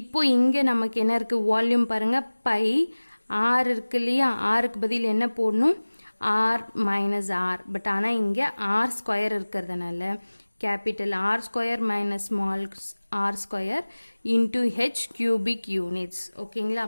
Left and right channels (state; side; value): inverted; both; correlation -1.00